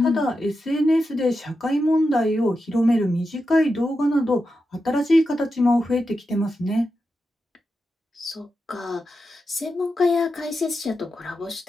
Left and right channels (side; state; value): both; normal; correlation 0.89